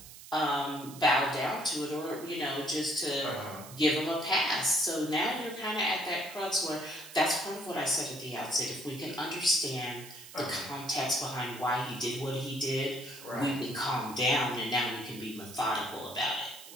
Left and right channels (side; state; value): right; noise; hiss, 16 dB below the sound